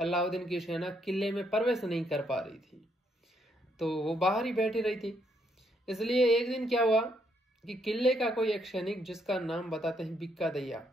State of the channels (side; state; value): both; normal; correlation 0.74